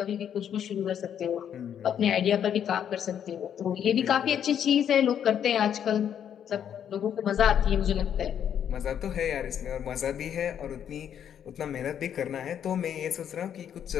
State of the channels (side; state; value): right; quieter; 9.1 dB